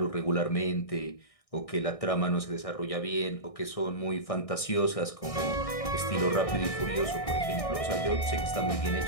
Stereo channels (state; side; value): late; right; 1.6 ms